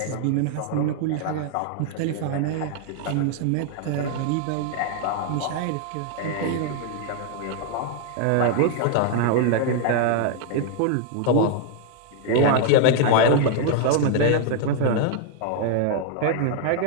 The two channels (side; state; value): both; different; correlation 0.00